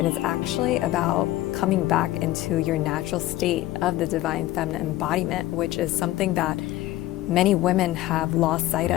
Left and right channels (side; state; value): right; quieter; 15.8 dB